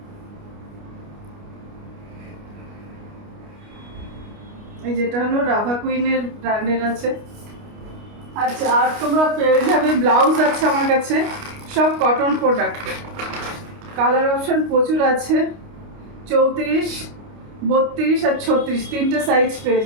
এই যেটা হলো রাভা কুইনের ব্র্যান্ডের আছে। আচ্ছা, আর তোমরা পেয়ে যাবে ব্লাউজ আছে আমার কাছে, সব কটন প্রোডাক্ট। কালার অপশন প্রচুর আছে, 34, 32 আর 36, তিনটে সাইজ পেয়ে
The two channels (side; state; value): left; late; 29 ms